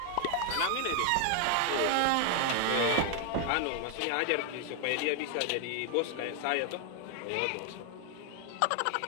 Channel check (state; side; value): different; both; correlation 0.00